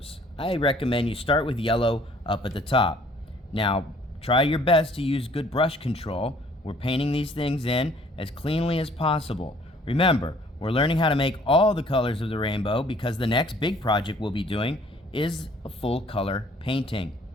I recommend you start with yellow up at the top. Now, try your best to use good brush control. We're painting these things in as cleanly as possible. Remember, we're learning how to make all the colors of the rainbow because the next big project we'll be doing is a full color painting.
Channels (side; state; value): both; normal; correlation 0.58